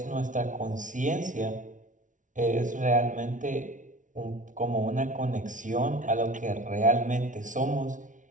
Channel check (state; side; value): late; left; 0.37 ms